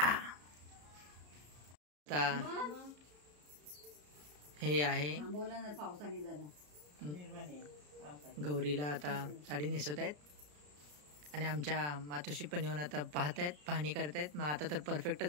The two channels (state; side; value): late; left; 34 ms